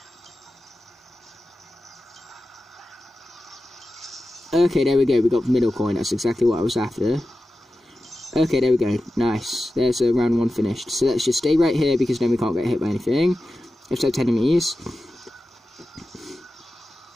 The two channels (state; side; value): normal; both; correlation 0.93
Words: Okay, there we go. We got the middle coin. That's exactly what I was after. Okay, there we go. Nice. There's round 1 finished. So let's just stay right here, because then we can't get hit by anything. Except enemies.